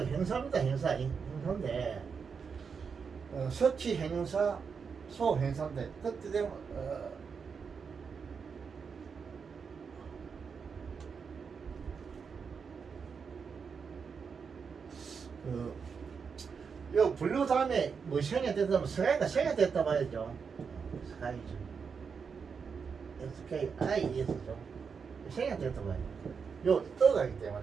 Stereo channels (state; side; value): quieter; left; 5.9 dB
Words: 행사입니다. 행사인데 서치 행사 소 행사인데 그때 되면 요 블루 다음에 뭐 생이 됐다면 생이 됐다 봐야죠. 스카이죠. SKIS죠. 생이 됐다 봐요. 요 떠가 있기